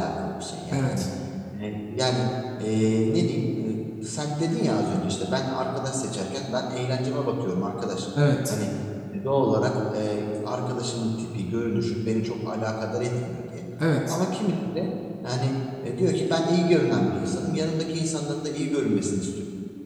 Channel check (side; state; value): both; identical; correlation 1.00